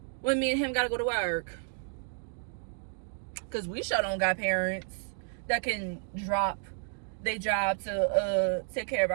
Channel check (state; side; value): silent; left; 57 dB below the other